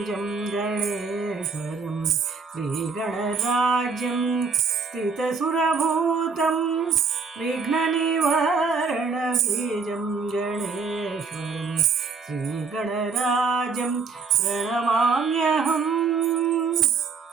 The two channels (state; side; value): quieter; left; 4.9 dB